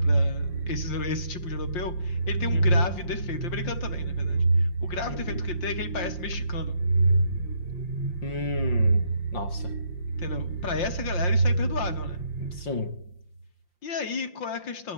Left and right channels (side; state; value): right; late; 5.7 ms